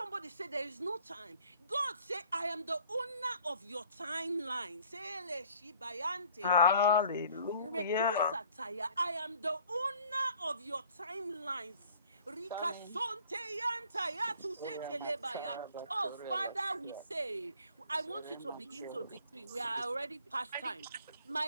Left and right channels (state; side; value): inverted; both; correlation -0.54